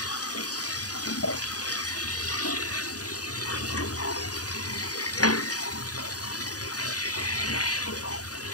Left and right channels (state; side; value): late; right; 0.68 ms